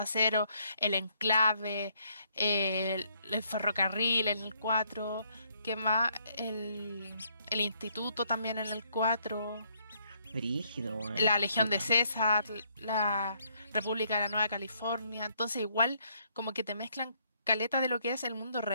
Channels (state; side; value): inverted; both; correlation -0.70